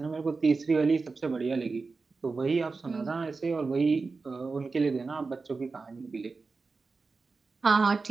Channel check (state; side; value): quieter; left; 4.2 dB